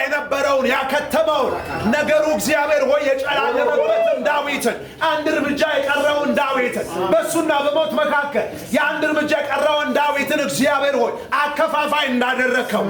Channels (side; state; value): both; identical; correlation 1.00